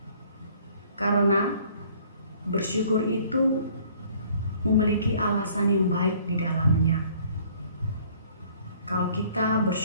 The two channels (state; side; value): inverted; both; correlation -0.57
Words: Karena bersyukur itu memiliki alasan yang baik di dalamnya. Kalau kita